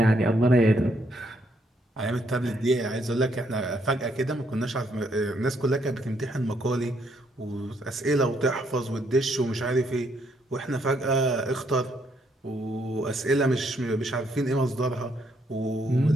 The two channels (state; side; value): normal; both; correlation 0.72